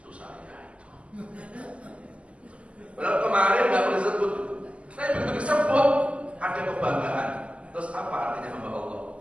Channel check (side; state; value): left; late; 0.059 ms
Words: saya itu. Padahal kemarin nggak boleh disebut. Tapi begitu disebut ada kebanggaan. Terus apa artinya hamba Allah?